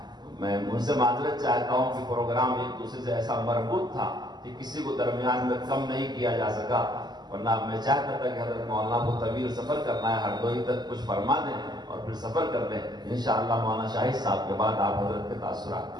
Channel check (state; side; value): late; left; 0.21 ms